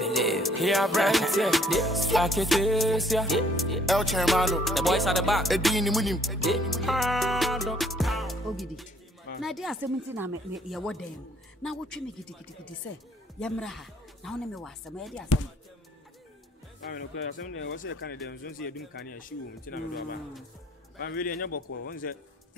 Yeah, Brent, yeah. Like it is, yeah. El Chairmano. The boys at the back. Edini Munim. Ogidi. Na dia 17 na me ye wodem. Na wotwe me gidi say yamra ha. Na wona me wasam ye dia asam. I mean, okay, asam ne wose kan dem so ye dum kan ya shi wo ntina me do aba. Ba me anya boko won say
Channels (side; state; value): both; normal; correlation 0.62